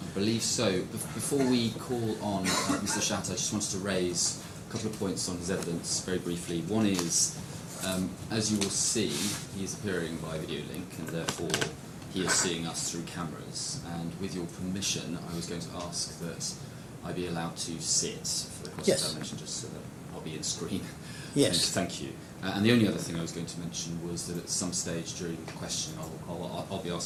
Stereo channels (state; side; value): identical; both; correlation 1.00